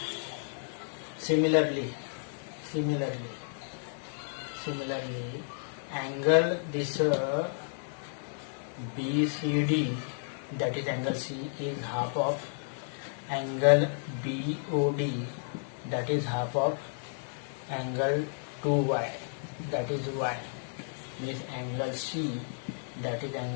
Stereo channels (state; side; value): silent; right; digital silence